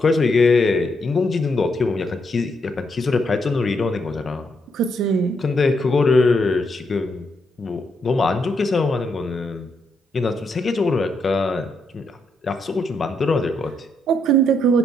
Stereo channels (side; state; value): both; normal; correlation 0.78